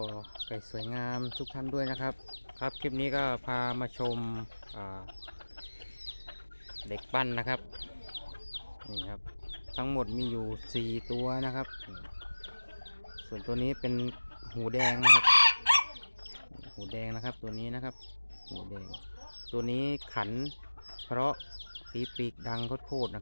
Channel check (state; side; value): inverted; both; correlation -1.00